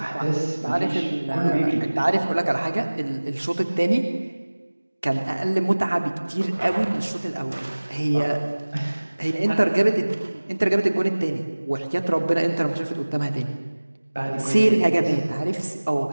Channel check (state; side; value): inverted; both; correlation -1.00